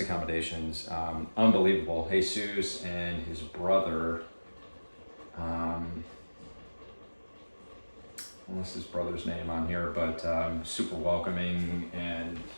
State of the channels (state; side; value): inverted; both; correlation -1.00